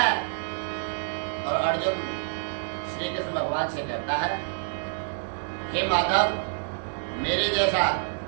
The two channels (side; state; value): left; silent; digital silence